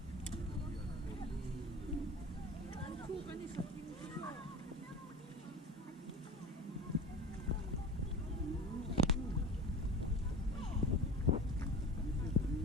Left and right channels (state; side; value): normal; both; correlation 0.35